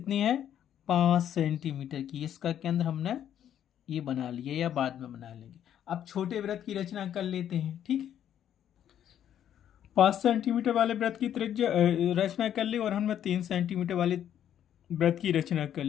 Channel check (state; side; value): quieter; right; 10.2 dB